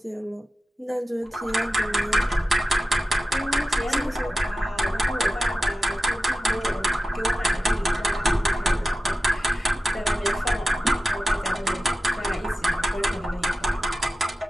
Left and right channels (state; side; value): normal; both; correlation 0.93